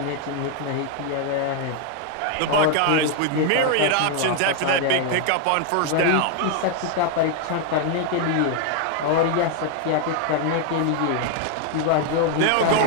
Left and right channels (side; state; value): both; different; correlation 0.00